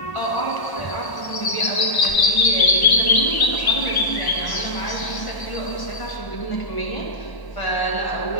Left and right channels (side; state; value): right; late; 1.0 ms